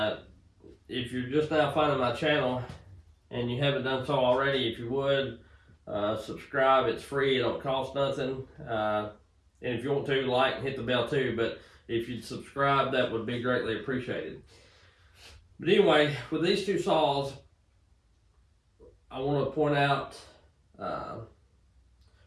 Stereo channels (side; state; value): both; identical; correlation 1.00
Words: if you're just now finding my channel and you haven't done so already, if you would subscribe. It's free, it don't cost nothing. And if you want to, like and hit the bell too. But if you'd subscribe, that would be greatly appreciated. But anyway, with these two saws, I want to point out